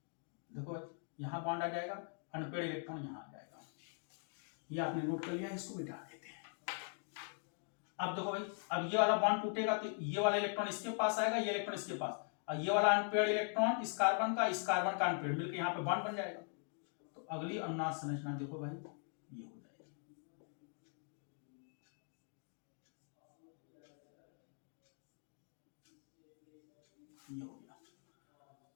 देखो भाई यहां बॉन्ड आ जाएगा, अनपेयर्ड इलेक्ट्रॉन यहां आ जाएगा। ये आपने नोट कर लिया, इसको मिटा देते हैं। अब देखो भाई, अब ये वाला बॉन्ड टूटेगा तो ये वाला इलेक्ट्रॉन इसके पास आएगा, ये इलेक्ट्रॉन इसके पास, और ये वाला अनपेयर्ड इलेक्ट्रॉन इस कार्बन का अनपेयर्ड मिलकर यहां पे बॉन्ड बन जाएगा। तो अगली अनुनाद संरचना देखो भाई ये हो जाएगी, ये हो गया।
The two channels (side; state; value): right; silent; 50 dB below the other